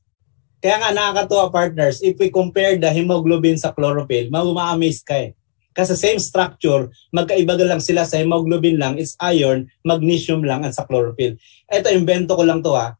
Kaya nga nakakatuwa, partners, if we compare the hemoglobin sa chlorophyll, ma-amaze ka Kasi same structure, magkaiba lang sila sa hemoglobin lang, it's iron, magnesium lang at sa chlorophyll. Ito, invento ko lang to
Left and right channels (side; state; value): right; silent; digital silence